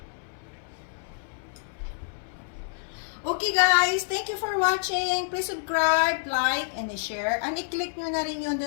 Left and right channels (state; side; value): silent; right; 60 dB below the other